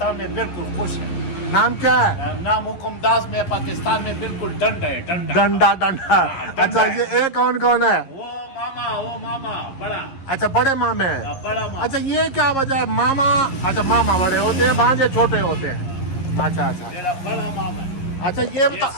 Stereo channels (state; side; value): late; right; 11 ms